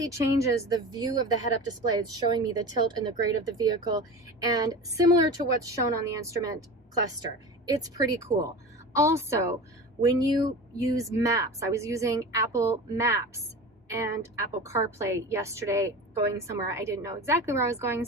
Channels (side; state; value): both; normal; correlation 0.32